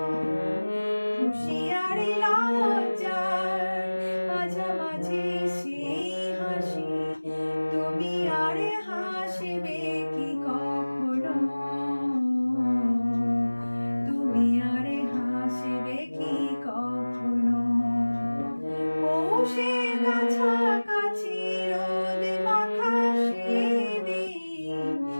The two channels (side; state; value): both; inverted; correlation -1.00